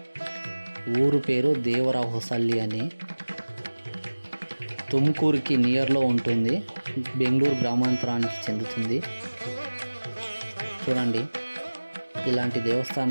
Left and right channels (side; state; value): both; inverted; correlation -1.00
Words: ఊరు పేరు దేవరహొసల్లి అని. తుమ్కూరుకి నియర్లో ఉంటుంది. బెంగళూరు గ్రామాంతరానికి చెందుతుంది. చూడండి, ఇలాంటి